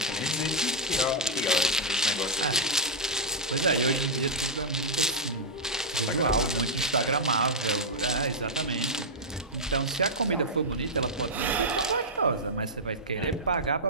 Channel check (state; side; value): normal; both; correlation -0.07